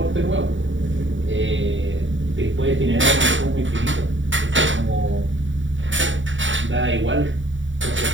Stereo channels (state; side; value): late; left; 0.55 ms